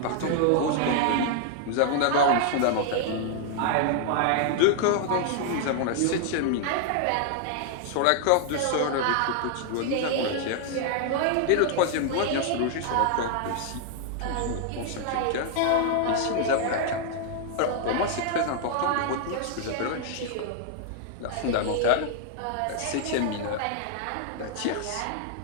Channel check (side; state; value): both; different; correlation 0.00